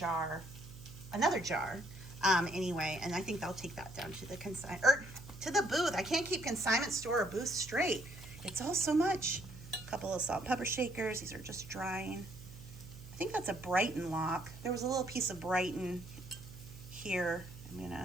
another jar. Anyway, and I think I'll take that down to the to the booth. I can't keep consignment store or booth straight. It's all so much. A couple of salt and pepper shakers. These are just drying. I think that's a Brighton lock. There was a little piece of Brighton here.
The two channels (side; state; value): right; noise; hum, 15 dB below the sound